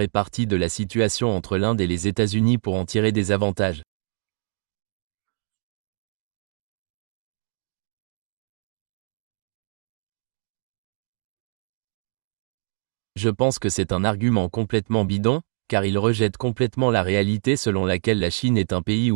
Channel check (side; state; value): left; silent; digital silence